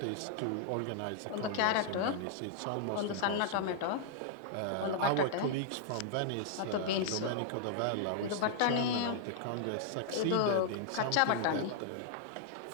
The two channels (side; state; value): both; different; correlation -0.01